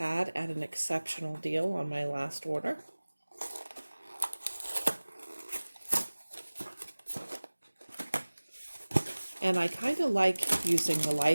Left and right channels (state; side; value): inverted; both; correlation -1.00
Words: at an exceptional deal on my last order. And I kind of like using the